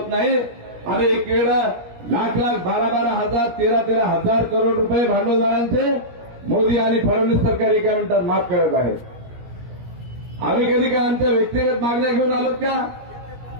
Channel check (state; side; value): late; left; 17 ms